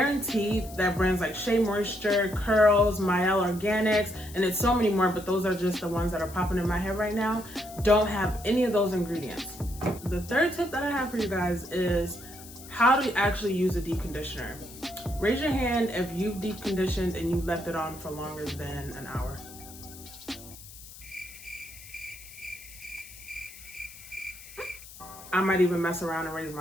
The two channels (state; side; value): noise; left; hiss, 17 dB below the sound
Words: that brands like Shea Moisture, Curls, Mielle Organics, and it's so many more, but those are just the ones that are popping in my head right now, don't have any of those ingredients. The third tip that I have for you guys is how to actually use a deep conditioner. Raise your hand if you've deep conditioned and you left it on for longer than an hour. I might even mess around and raise